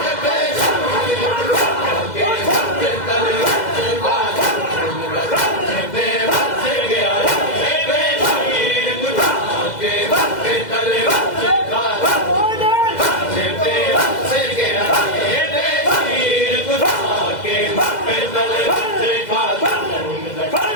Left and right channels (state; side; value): late; right; 2.0 ms